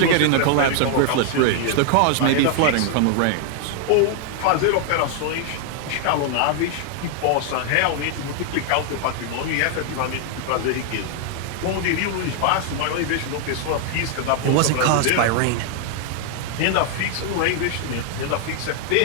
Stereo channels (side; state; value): both; different; correlation 0.00